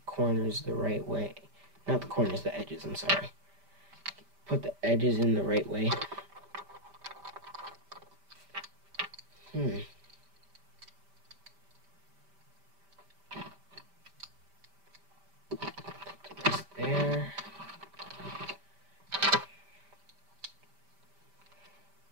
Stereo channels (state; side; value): late; left; 5.1 ms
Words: corners the right way. Not the corners, the edges, I'm sorry. Put the edges in the right way. Put the rest there.